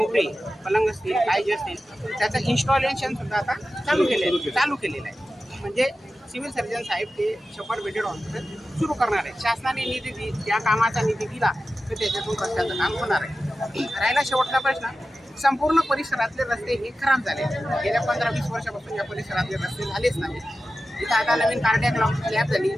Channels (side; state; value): both; normal; correlation 0.93